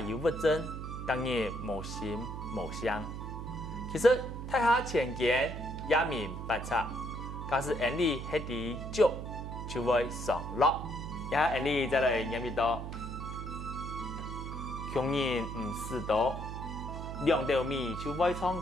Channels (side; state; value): right; noise; hum, 7 dB below the sound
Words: 有物证，当然无心无相。其实太下前见也明白察，假使眼里黑啲足，就会上落。也眼里再来念一道：穷人唔是多，两斗米就会唱